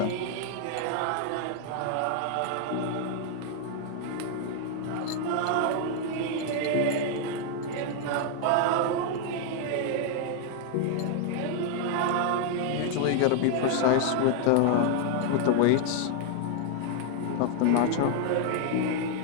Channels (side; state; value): both; different; correlation 0.00